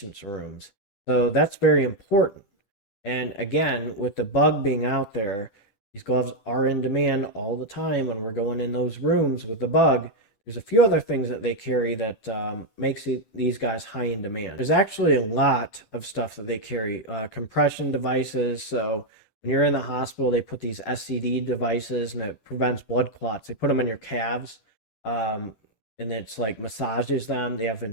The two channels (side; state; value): right; late; 10 ms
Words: rooms. So that's very important. And again, with the bug being out there, these gloves are in demand all the time when we're going in those rooms with the bug. There's a few other things that they carry that makes these guys high in demand. There's actually a lot of stuff that they carry. Compression devices. So when you're in the hospital, they put these SCD devices and it prevents blood clots. They put them in your calves and it's like massages them. They have